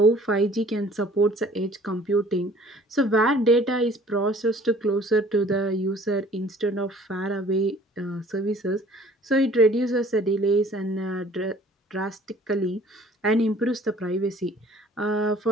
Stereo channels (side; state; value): both; normal; correlation 0.53